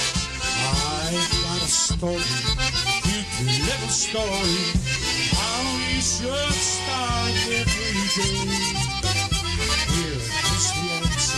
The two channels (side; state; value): both; identical; correlation 1.00